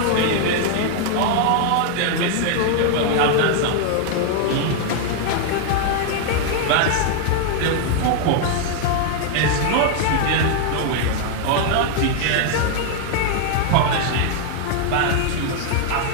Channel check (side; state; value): both; different; correlation 0.00